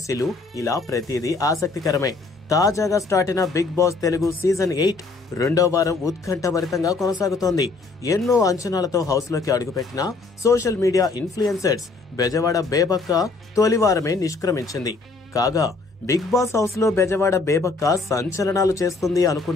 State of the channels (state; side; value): quieter; right; 3.8 dB